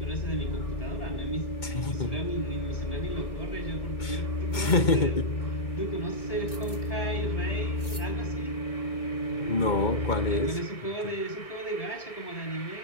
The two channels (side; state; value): right; late; 2.2 ms